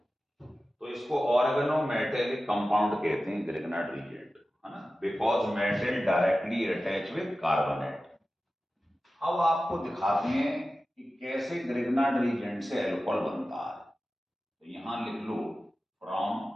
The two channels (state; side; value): normal; both; correlation 0.94